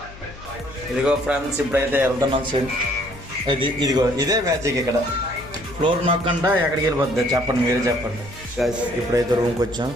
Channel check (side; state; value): left; noise; hum, 18 dB below the sound